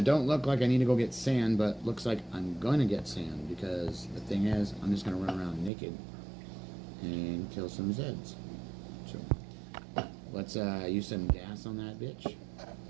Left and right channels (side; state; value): left; drops out; at 5.7 s